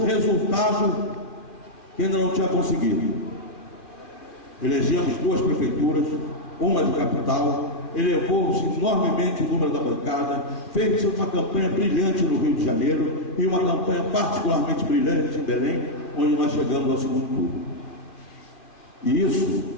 resultado que ainda não tinha conseguido. Elegemos 2 prefeituras, uma de capital, elevou-se enormemente o número da bancada, fez uma campanha brilhante no Rio de Janeiro e uma campanha particularmente brilhante em Belém, onde nós chegamos ao segundo turno. E isso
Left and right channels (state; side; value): late; right; 2.3 ms